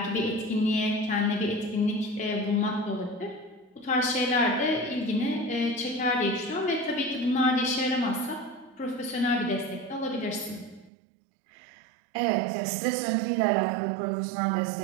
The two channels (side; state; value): left; drops out; at 10.9 s